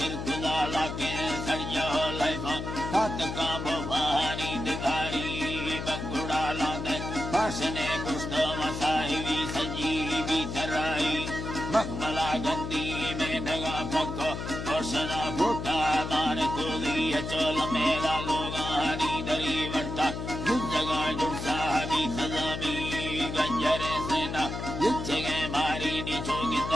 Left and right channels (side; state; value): left; noise; hum, 5 dB below the sound